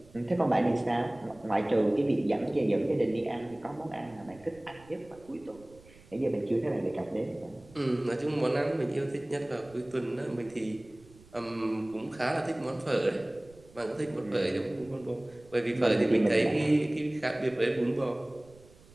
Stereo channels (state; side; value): noise; right; rumble, 25 dB below the sound